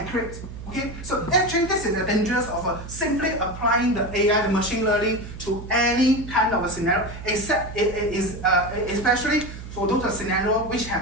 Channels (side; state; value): right; noise; hum, 12 dB below the sound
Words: Okay, so actually this is the dangers of simply applying the AI, the machine learning to any kind of a scenario, except it is especially for those scenarios which